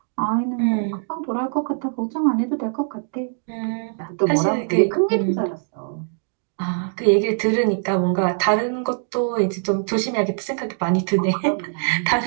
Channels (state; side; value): silent; left; digital silence